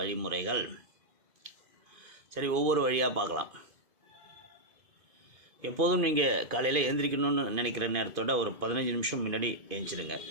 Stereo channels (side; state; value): left; late; 2.5 ms